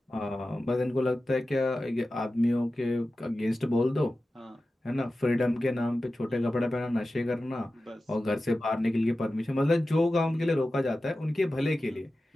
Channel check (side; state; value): both; normal; correlation 0.94